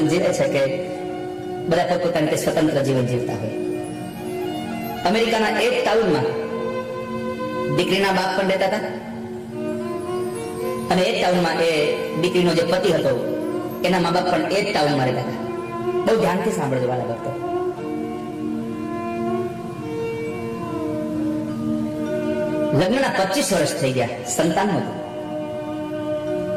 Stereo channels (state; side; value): identical; both; correlation 1.00